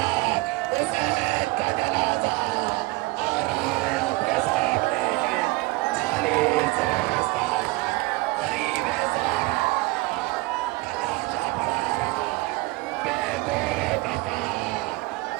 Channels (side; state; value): left; quieter; 22.7 dB